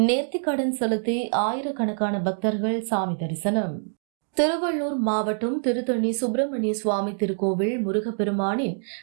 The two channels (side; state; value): left; silent; digital silence